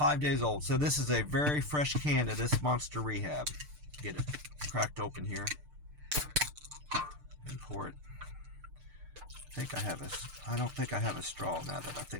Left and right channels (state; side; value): late; left; 6.7 ms